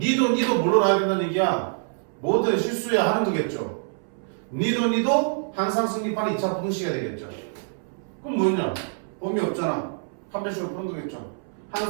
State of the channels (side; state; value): left; silent; 61 dB below the other